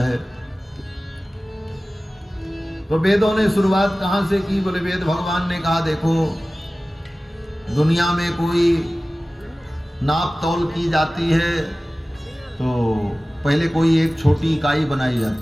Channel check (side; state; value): both; normal; correlation 0.97